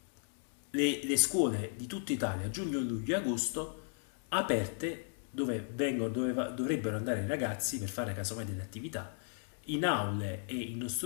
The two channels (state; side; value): silent; right; 54 dB below the other